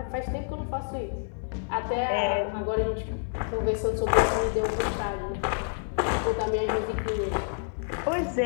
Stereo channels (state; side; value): silent; right; 59 dB below the other